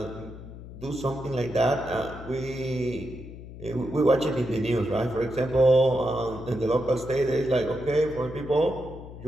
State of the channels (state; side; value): noise; left; hum, 14 dB below the sound